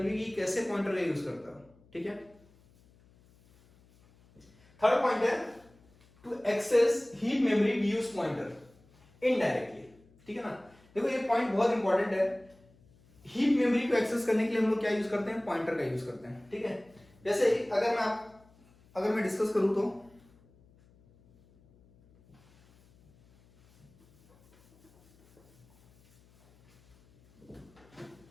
कि कैसे पॉइंटर का यूज करता है। ठीक है, थर्ड पॉइंट है to access heap memory we use pointer indirectly. ठीक है ना। देखो ये पॉइंट बहुत इंपॉर्टेंट है। हीप मेमोरी को एक्सेस करने के लिए हम लोग क्या यूज करते हैं, पॉइंटर का यूज करते हैं। ठीक है, जैसे अगर मैं डिस्कस करूं तो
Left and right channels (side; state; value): left; noise; hum, 29 dB below the sound